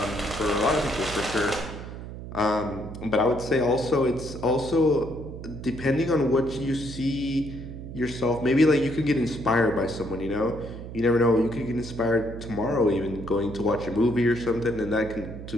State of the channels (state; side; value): noise; right; hum, 10 dB below the sound